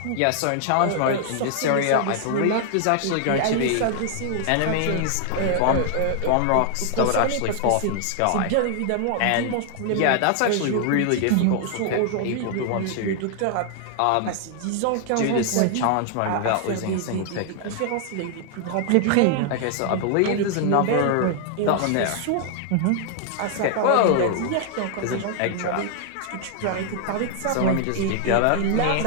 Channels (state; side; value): different; both; correlation 0.00